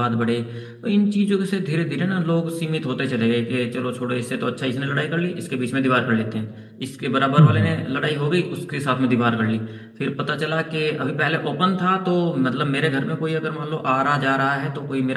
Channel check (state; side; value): identical; both; correlation 1.00